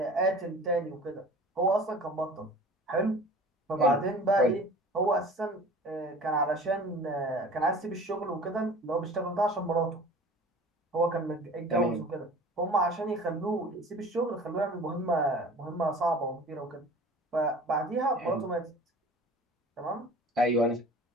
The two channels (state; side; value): normal; both; correlation 0.43